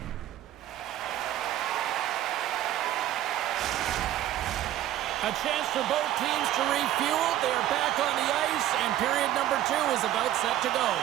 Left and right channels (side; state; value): left; quieter; 12.8 dB